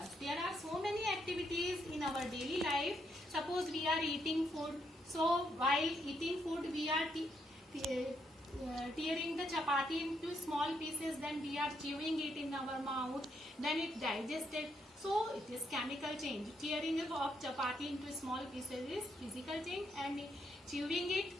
There are so many activities in our daily life. Suppose we are eating food. So while eating food we are tearing the chapati into small pieces, then we are chewing it in our mouth, then it digested. So it is chemical change. Tearing of chapati into small pieces is physical change, and chewing it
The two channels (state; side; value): normal; both; correlation 0.77